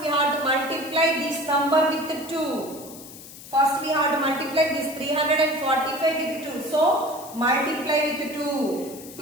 have to multiply this number with 2. First we have to multiply this 345 with 2. So multiply with 2.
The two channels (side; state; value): left; noise; hiss, 16 dB below the sound